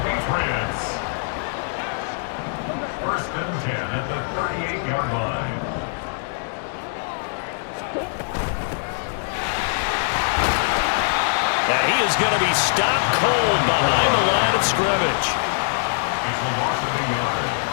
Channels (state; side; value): silent; right; 64 dB below the other